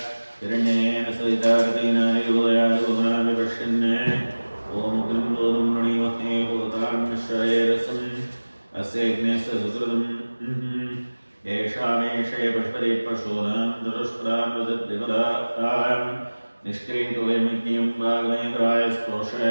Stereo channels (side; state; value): both; inverted; correlation -1.00